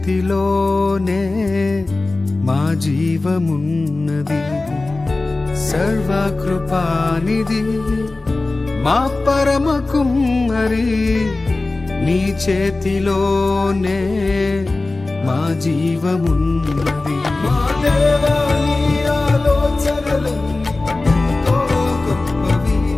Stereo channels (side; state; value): right; quieter; 3.2 dB